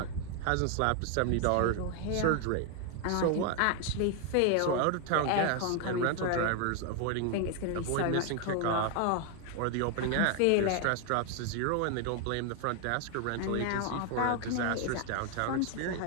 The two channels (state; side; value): different; both; correlation 0.00